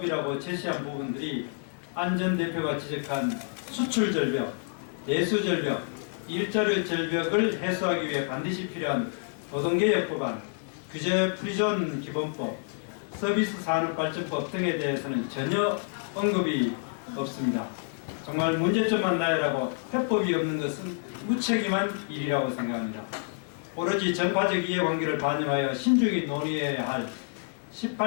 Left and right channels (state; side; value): silent; right; digital silence